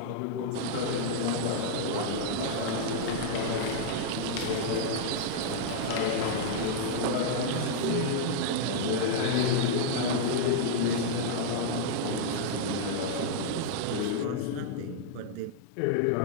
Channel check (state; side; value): different; both; correlation -0.01